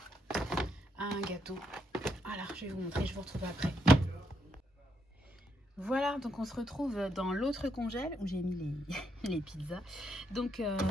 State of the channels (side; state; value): both; normal; correlation 0.77